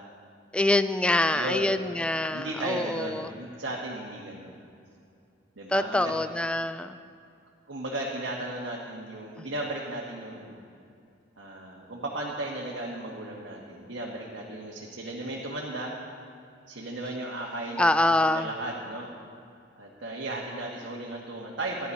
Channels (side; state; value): both; normal; correlation 0.62